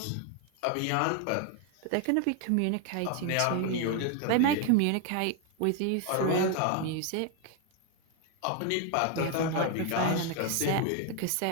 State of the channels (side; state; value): both; different; correlation 0.01